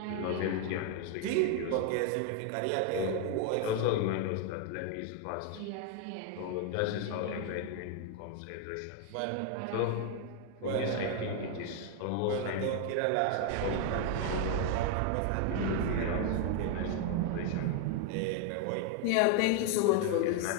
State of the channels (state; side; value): different; both; correlation 0.01